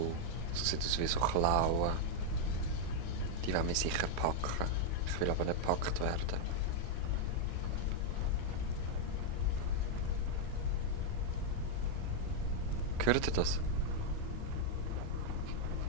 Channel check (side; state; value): both; different; correlation -0.01